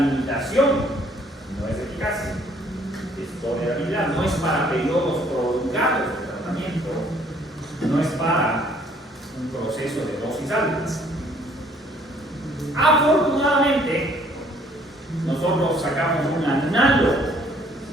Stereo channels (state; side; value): normal; both; correlation 0.61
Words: no es eficacia, es tolerabilidad, no es para periodos prolongados de tratamiento, no es para un proceso de dosis altas. Afortunadamente, nosotros sacamos un análogo